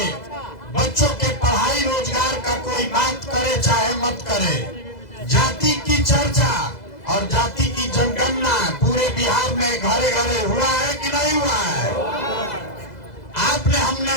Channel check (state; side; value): late; right; 2.0 ms